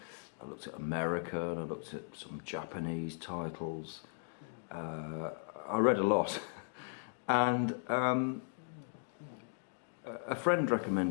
I looked at America and I looked at some Japanese titles. I read a lot. And a friend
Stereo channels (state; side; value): silent; right; digital silence